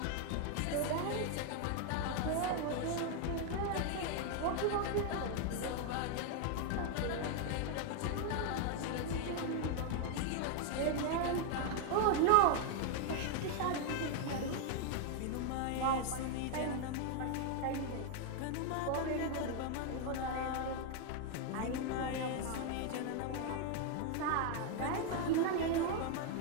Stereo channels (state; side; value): different; both; correlation 0.01